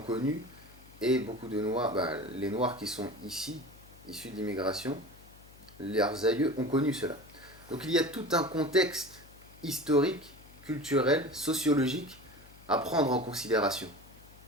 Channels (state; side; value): noise; left; hum, 22 dB below the sound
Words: connu, et beaucoup de Noirs, les Noirs qui sont ici, issus de l'immigration, leurs aïeux ont connu cela. Donc il y a tout un contexte historique, culturel, sociologique à prendre en considération.